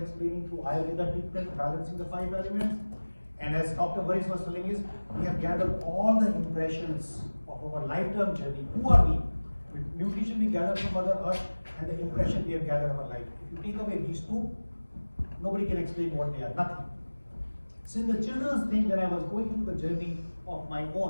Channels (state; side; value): inverted; both; correlation -1.00